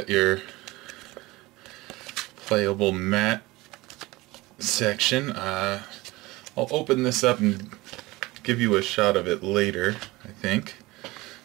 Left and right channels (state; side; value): quieter; left; 20.9 dB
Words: your playable mat section. I'll open this up and give you a shot of it later, I think.